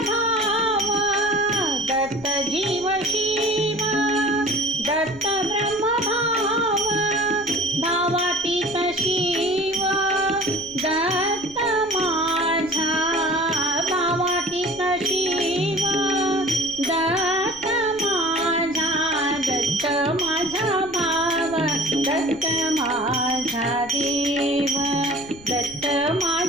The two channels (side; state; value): left; noise; rumble, 21 dB below the sound